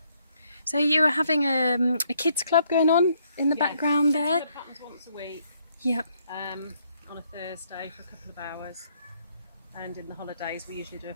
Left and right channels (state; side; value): inverted; both; correlation -0.70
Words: So you were having a kids club going on in the background there? It happens once a week. Yep. On a Thursday for a couple of hours. And in the holidays we usually do a